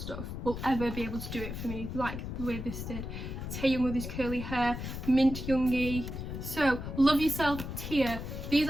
will ever be able to do it for me like the way this did. Taehyung with his curly hair, Mint Yoongi. So, Love Yourself tier. These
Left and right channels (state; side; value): noise; left; rumble, 6 dB below the sound